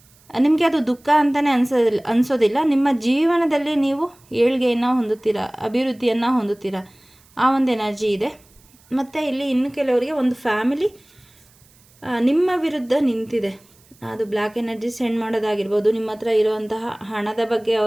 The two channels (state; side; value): noise; right; hiss, 30 dB below the sound